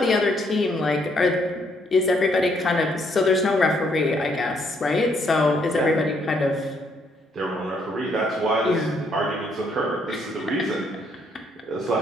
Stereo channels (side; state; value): both; normal; correlation 0.70